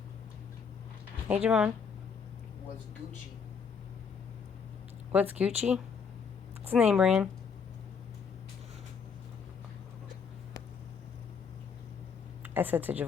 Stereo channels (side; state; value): right; quieter; 6.1 dB